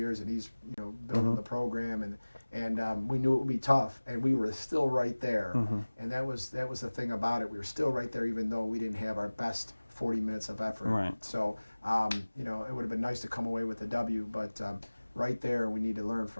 and he's building the program, and we knew it would be tough, and we were still right there. And that was the thing about it. We were still right there, even though we didn't have our best 40 minutes of effort. Right. So it would have been nice to come away with a W, but right there, we need to learn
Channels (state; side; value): inverted; both; correlation -1.00